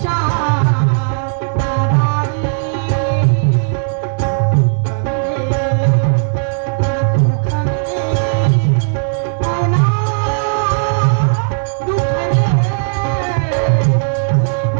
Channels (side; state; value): left; silent; digital silence